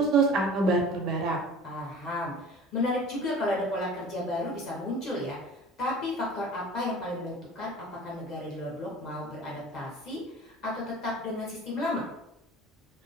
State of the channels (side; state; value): both; normal; correlation 0.42